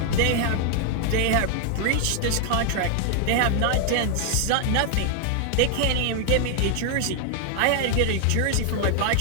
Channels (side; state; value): both; different; correlation 0.00